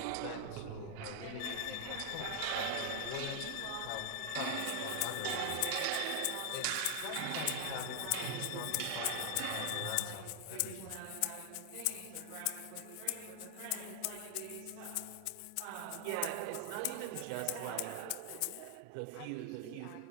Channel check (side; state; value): both; different; correlation 0.00